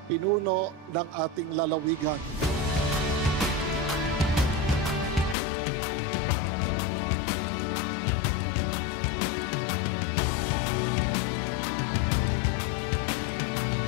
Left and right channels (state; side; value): drops out; right; at 5.4 s